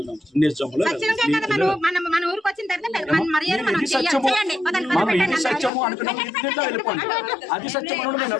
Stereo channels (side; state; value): right; drops out; at 5.7 s